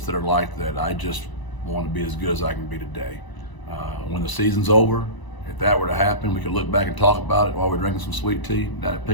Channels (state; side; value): late; right; 1.0 ms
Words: that are like that. I just want to be as good as I can be today. When the season's over, if that were to happen, we could look back and talk about it while we're drinking some sweet tea down at